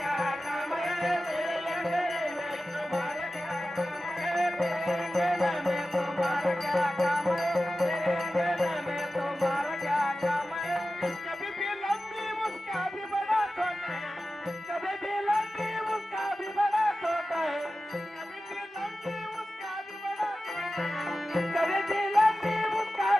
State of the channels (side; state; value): both; normal; correlation 0.94